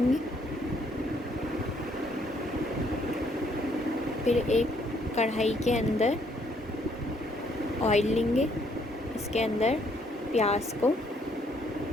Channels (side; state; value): both; normal; correlation 0.68